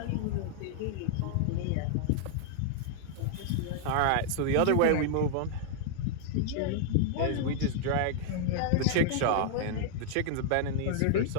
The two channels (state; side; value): different; both; correlation 0.00